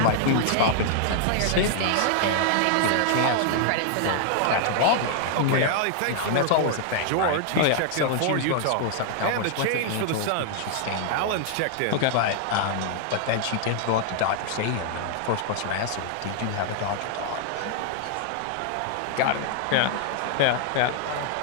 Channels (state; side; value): different; both; correlation -0.01